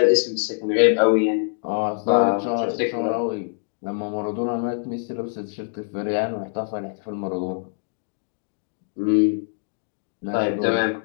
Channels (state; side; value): silent; right; digital silence